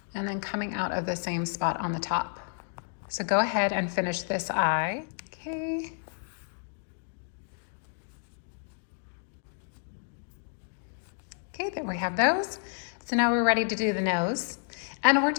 and then coming out of the same spot on the top. So go ahead and finish this eye. Okay. Okay, there we have those. So now we're ready to do the nose. And we're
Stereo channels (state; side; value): silent; right; digital silence